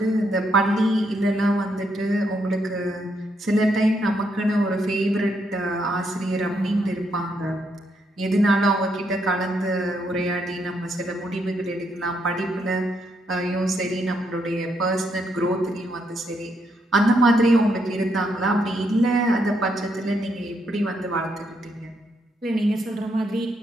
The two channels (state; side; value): normal; both; correlation 0.76